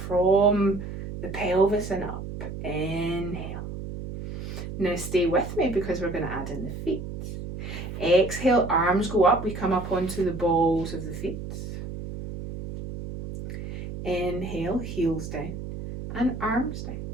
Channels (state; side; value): noise; right; hum, 8 dB below the sound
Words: from the pelvis and up. Inhale. Now stay with me because we're going to add in the feet. Exhale, arms go up, we come up onto the balls of the feet. Inhale, heels down and arms down.